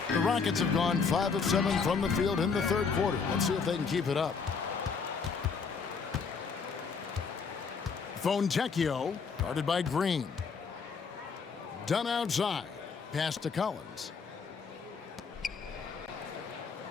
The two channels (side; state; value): right; quieter; 5.5 dB